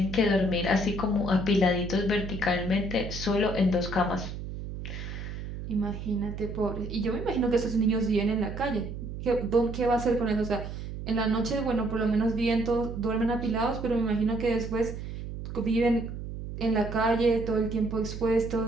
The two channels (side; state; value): right; noise; hum, 8 dB below the sound